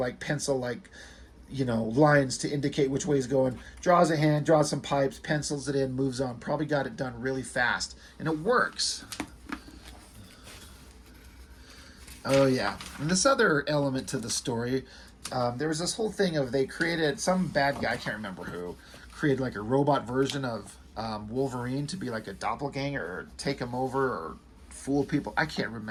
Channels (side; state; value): both; identical; correlation 1.00